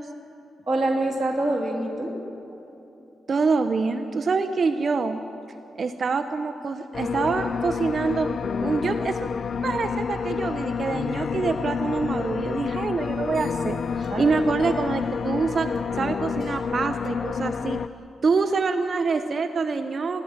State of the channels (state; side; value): normal; both; correlation 0.85